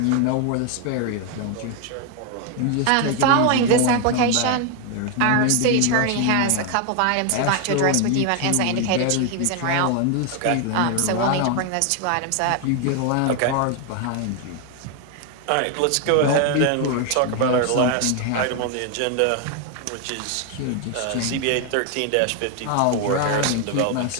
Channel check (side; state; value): both; different; correlation 0.01